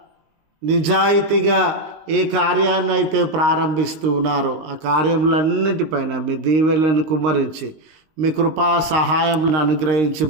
నిజాయితీగా ఏ కార్యాన్ని అయితే ప్రారంభిస్తూ ఉన్నారో ఆ కార్యములన్నిటిపైన మీ దీవెనలను కుమ్మరించి మీ కృపా సహాయం అనుగ్రహించి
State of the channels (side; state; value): left; late; 19 ms